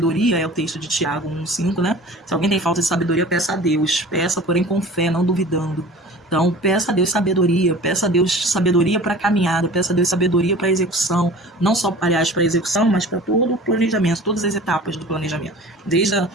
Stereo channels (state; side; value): normal; both; correlation 0.42